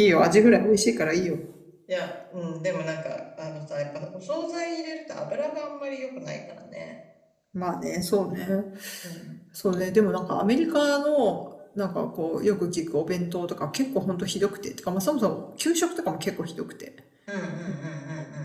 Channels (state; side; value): identical; both; correlation 1.00